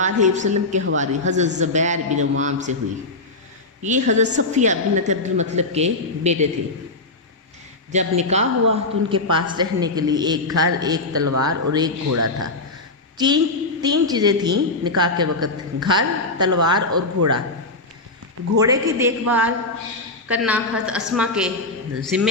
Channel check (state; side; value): quieter; right; 3.1 dB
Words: وسلم کے حواری حضرت زبیر بن عوام سے ہوئی۔ یہ حضرت صفیہ بنت عبد المطلب کے بیٹے تھے۔ جب نکاح ہوا تو ان کے پاس رہنے کے لیے ایک گھر، ایک تلوار اور ایک گھوڑا تھا۔ تین چیزیں تھیں نکاح کے وقت: گھر، تلوار اور گھوڑا۔ گھوڑے کی دیکھ بھال کرنا حضرت اسما کے